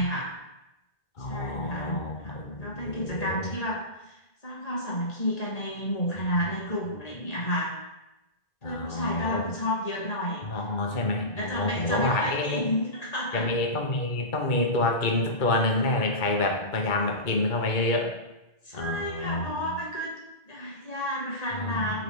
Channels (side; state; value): right; late; 2.2 ms